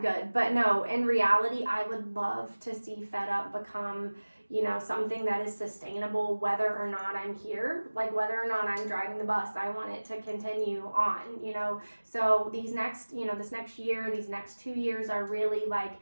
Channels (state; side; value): inverted; both; correlation -1.00